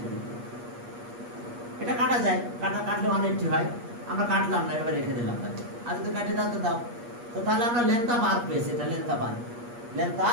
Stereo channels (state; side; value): late; left; 8.4 ms